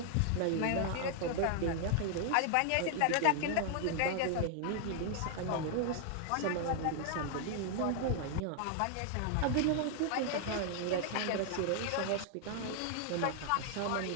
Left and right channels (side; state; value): both; different; correlation 0.00